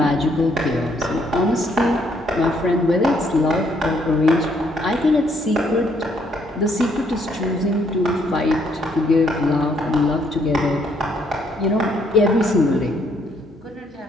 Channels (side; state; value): both; normal; correlation 0.69